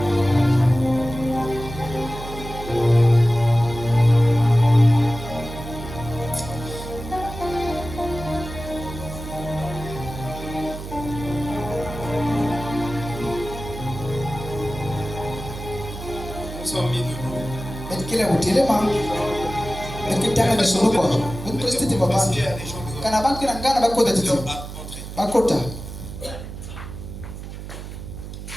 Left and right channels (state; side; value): noise; right; hum, 10 dB below the sound